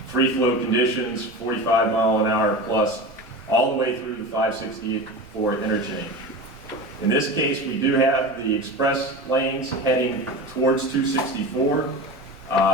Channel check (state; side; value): normal; both; correlation 0.29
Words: Free flow conditions, 45 mile an hour plus, all the way through the 564 interchange. In this case, we do have the express lanes heading towards 264